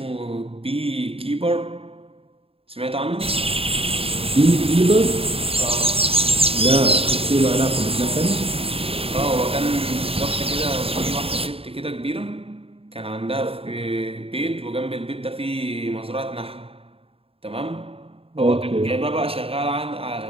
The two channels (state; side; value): late; left; 0.27 ms